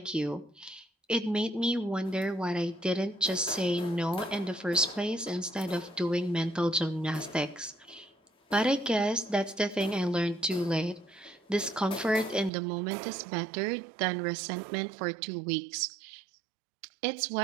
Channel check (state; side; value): drops out; left; at 12.5 s